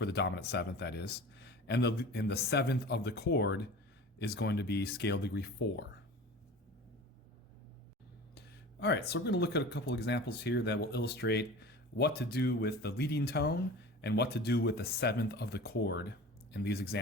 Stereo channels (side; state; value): both; normal; correlation 0.37